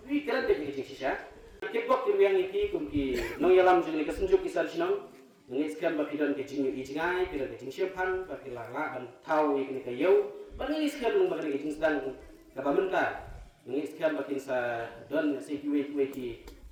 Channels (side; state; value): both; identical; correlation 1.00